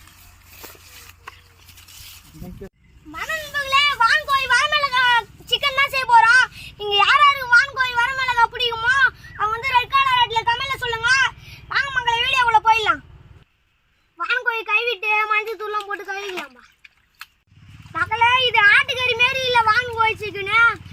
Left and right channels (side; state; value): both; identical; correlation 1.00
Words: மனநண்பர்களே, வான்கோழி வரமிளகா சிக்கன் தான் செய்ய போறோம். இங்க யாராருக்கு வான்கோழி வரமிளகா பிடிக்குமோ அவங்க வந்து ரெட் கலர் ரெட்ல கமெண்ட்ல சொல்லுங்க. வாங்க மக்களை வீடியோக்குள்ள போயிடலாம். வான்கோழி கைவிட்டு மஞ்சள் தூள்லாம் போட்டு கழுவிக்கலாம்பா. மக்களே, இது ஆட்டுக்கறி மாரி இல்லை வான்கோழி சிக்கனு.